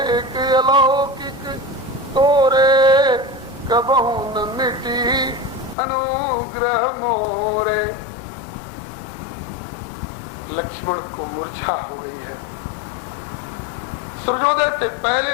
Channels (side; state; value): right; drops out; at 5.8 s